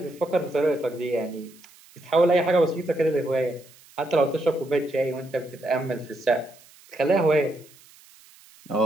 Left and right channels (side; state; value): right; noise; hiss, 25 dB below the sound